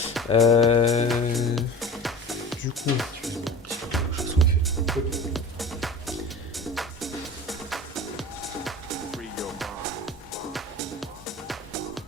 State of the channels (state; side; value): normal; both; correlation 0.37